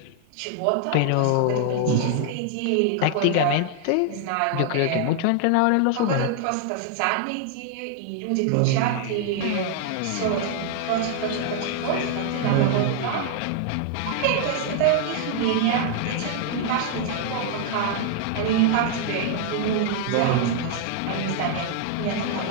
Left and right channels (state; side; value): different; both; correlation 0.00